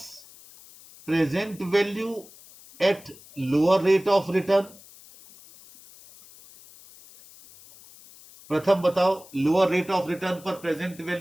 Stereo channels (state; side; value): noise; left; hiss, 22 dB below the sound